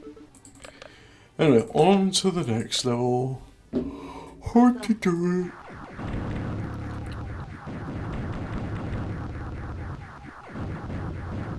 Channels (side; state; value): both; identical; correlation 1.00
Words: Anyway, on to the next level. Hard to do it.